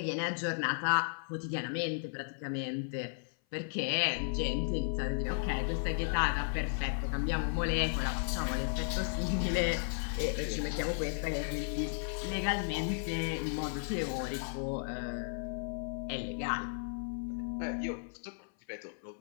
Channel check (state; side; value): silent; right; 55 dB below the other